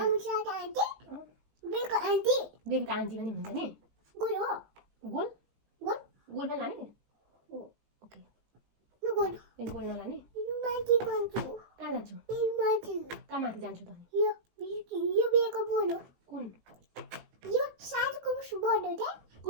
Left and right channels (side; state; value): left; late; 18 ms